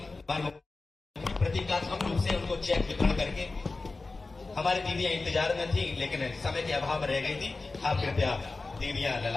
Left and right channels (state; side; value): quieter; right; 3.6 dB